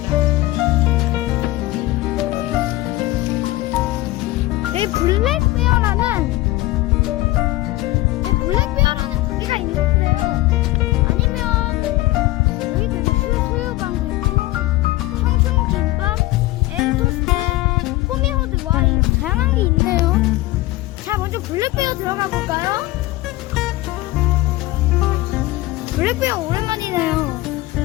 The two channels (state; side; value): quieter; right; 18.3 dB